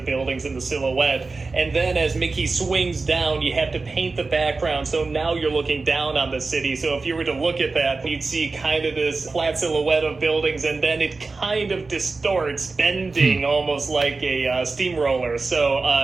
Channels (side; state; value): left; quieter; 3.9 dB